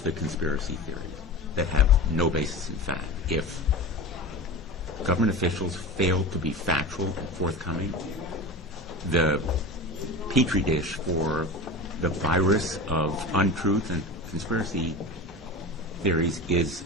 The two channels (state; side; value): normal; both; correlation 0.30